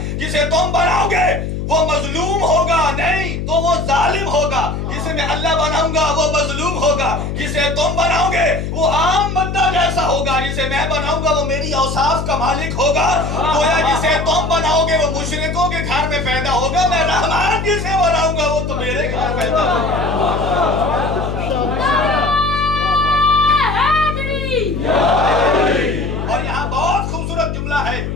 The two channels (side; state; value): left; noise; hum, 4 dB below the sound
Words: جسے تم بناؤ گے وہ مظلوم ہوگا نہیں تو وہ ظالم ہوگا، جسے میں اللہ بناؤں گا وہ مظلوم ہوگا، جسے تم بناؤ گے وہ عام بندہ جیسا ہوگا، جسے میں بناؤں گا وہ میری اوصاف کا مالک ہوگا۔ گویا جسے تم بناؤ گے وہ مشرکوں کے گھر میں پیدا ہوگا، میں رحمان جسے بناؤں گا وہ تو میرے گھر پیدا ہوگا۔ اور یہاں بہت خوبصورت جملہ ہے